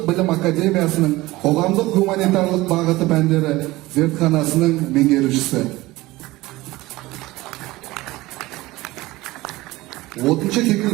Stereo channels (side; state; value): left; quieter; 19.2 dB